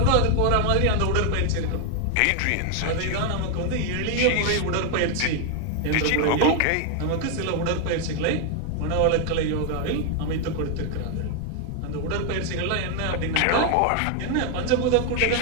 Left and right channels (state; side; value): different; both; correlation 0.00